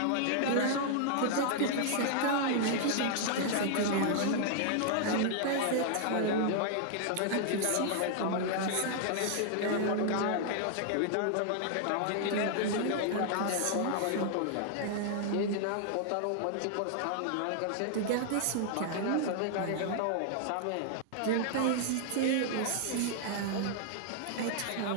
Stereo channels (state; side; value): different; both; correlation 0.00